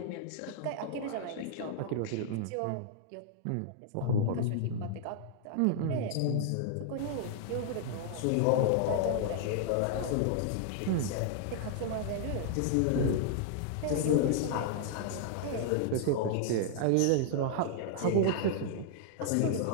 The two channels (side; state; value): both; different; correlation -0.01